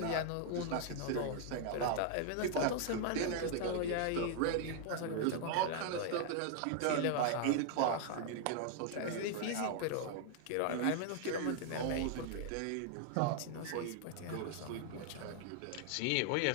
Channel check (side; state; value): both; different; correlation 0.00